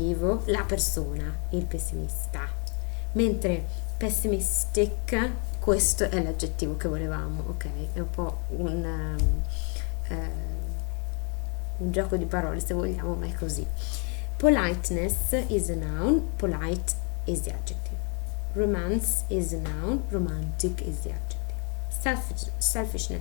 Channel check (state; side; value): quieter; right; 36.4 dB